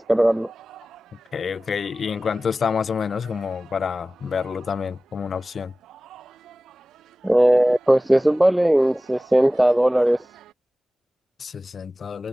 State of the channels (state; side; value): normal; both; correlation 0.97